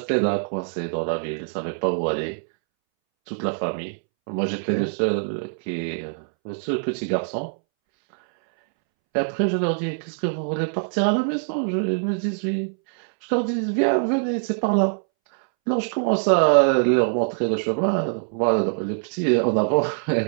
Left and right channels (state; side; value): silent; left; 63 dB below the other